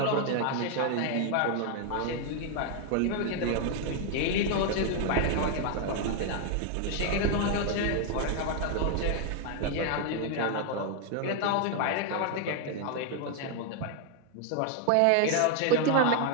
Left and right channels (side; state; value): both; different; correlation 0.01